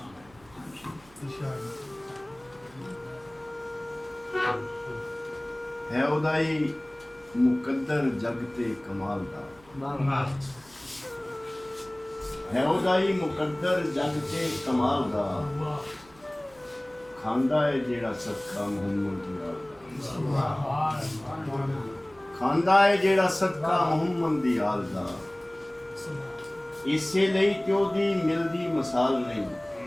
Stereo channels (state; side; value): noise; right; hum, 27 dB below the sound